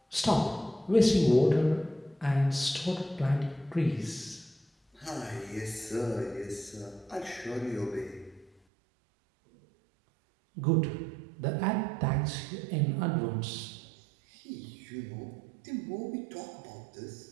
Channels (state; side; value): drops out; left; at 8.5 s